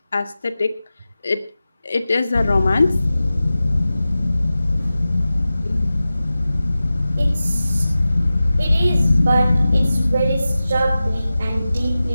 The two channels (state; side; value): inverted; both; correlation -0.95